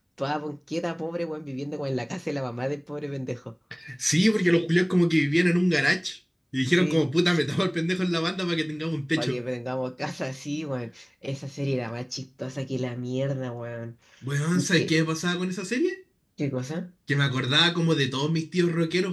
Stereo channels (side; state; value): both; identical; correlation 1.00